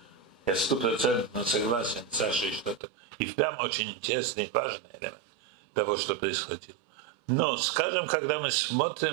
Я 100% согласен с Сашей, что это и впрямь очень интересный и важный элемент того, что происходило. Но, скажем, когда мы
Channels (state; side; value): drops out; left; at 2.8 s